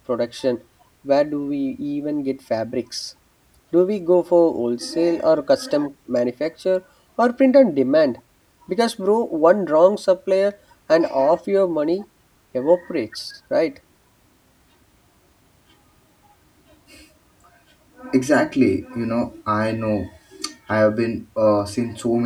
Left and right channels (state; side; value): identical; both; correlation 1.00